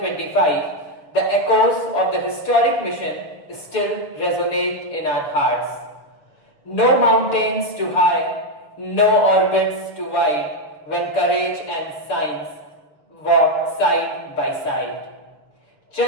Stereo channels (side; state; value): right; late; 6.8 ms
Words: the echoes of the historic mission still resonate in our hearts. No mountains too high, no orbits too wide, when courage and science walk side by side.